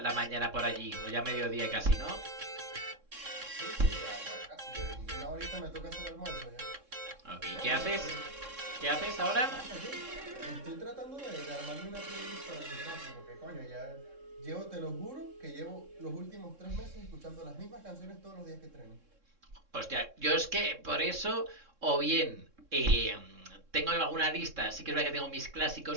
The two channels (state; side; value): late; left; 3.6 ms